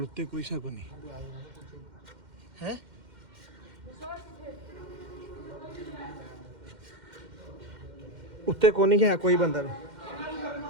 ਉੱਤੇ ਕੋਈ ਸ਼ੱਕ ਨਹੀਂ ਹੈ। ਉੱਤੇ ਕੋਈ ਨਹੀਂ ਹੈ ਕੋਈ ਬੰਦਾ ਵੀ।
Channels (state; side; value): late; left; 2.1 ms